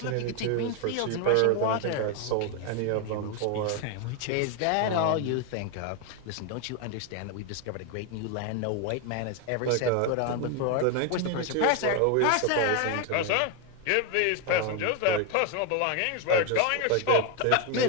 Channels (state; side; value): different; both; correlation 0.01